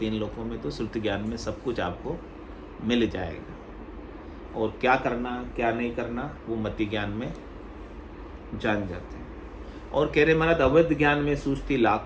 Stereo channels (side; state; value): both; identical; correlation 1.00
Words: लोकों में, तो श्रुति ज्ञान में सब कुछ आपको मिल जाएगा। और क्या करना क्या नहीं करना वो मति ज्ञान में जान जाते हैं। और कह रहे महाराज अवध ज्ञान में सूझती